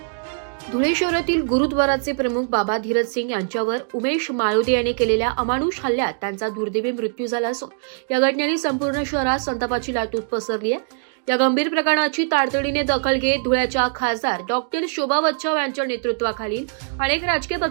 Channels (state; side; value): silent; left; digital silence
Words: धुळे शहरातील गुरुद्वाराचे प्रमुख बाबा धीरज सिंग यांच्यावर उमेश माळोदे यांनी केलेल्या अमानुष हल्ल्यात त्यांचा दुर्दैवी मृत्यू झाला असून या घटनेने संपूर्ण शहरात संतापाची लाट पसरली आहे। या गंभीर प्रकरणाची तातडीने दखल घेत धुळ्याच्या खासदार डॉक्टर शोभा बच्छाव यांच्या नेतृत्वाखालील अनेक राजकीय